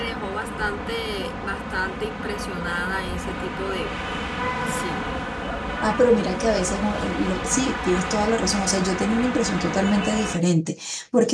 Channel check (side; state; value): both; identical; correlation 1.00